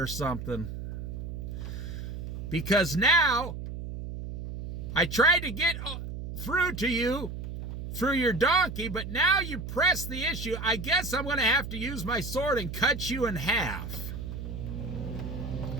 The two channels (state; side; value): noise; right; hum, 7 dB below the sound